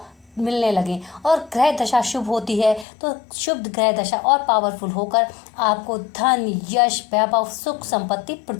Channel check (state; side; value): drops out; right; at 2.9 s